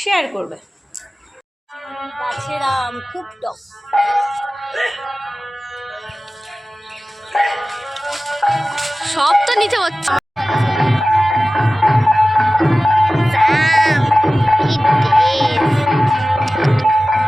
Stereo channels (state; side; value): normal; both; correlation 0.97